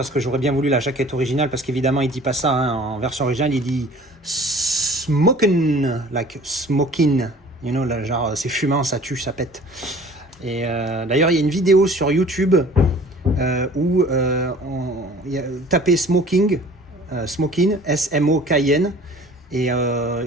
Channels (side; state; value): both; normal; correlation 0.48